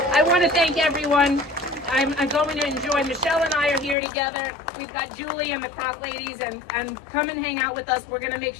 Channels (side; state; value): right; drops out; at 4.0 s